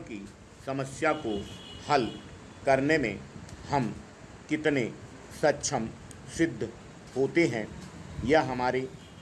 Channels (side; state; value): both; identical; correlation 1.00